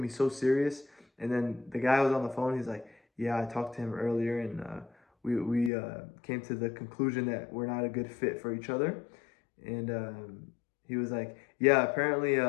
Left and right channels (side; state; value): right; drops out; at 5.7 s